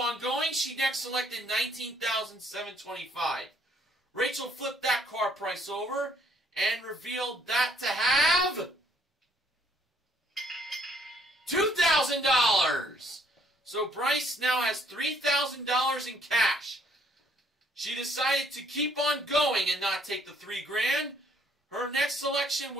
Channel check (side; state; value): both; normal; correlation 0.65